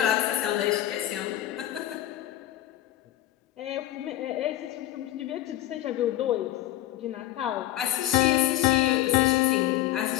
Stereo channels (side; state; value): right; quieter; 14.0 dB